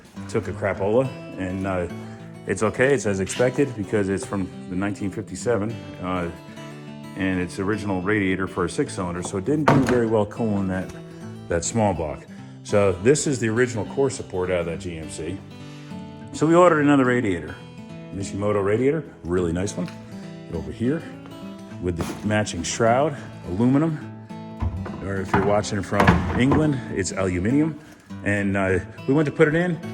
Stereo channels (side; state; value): both; identical; correlation 1.00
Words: took a crapola, and it's okay, it's as expected because it's from the 1957, and it's original radiator for a 6-cylinder, so it didn't do very well cooling that small block. So this is the original core support out of that GMC. So we ordered another radiator, Mishimoto radiator, really nice one, over here with the matching shroud, aluminum, or if you're watching from England, it's aluminium. And we went to put it in,